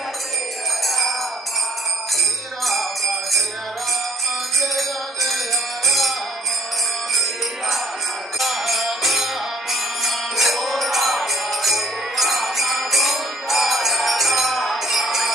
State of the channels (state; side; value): normal; both; correlation 0.62